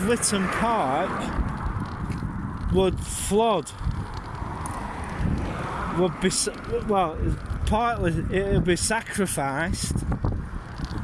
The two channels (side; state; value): both; identical; correlation 1.00